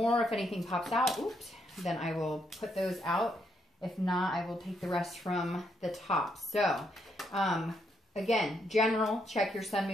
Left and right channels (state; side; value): normal; both; correlation 0.76